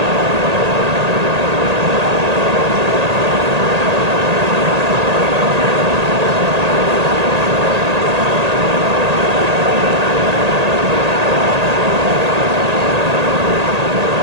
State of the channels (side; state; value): left; late; 1.8 ms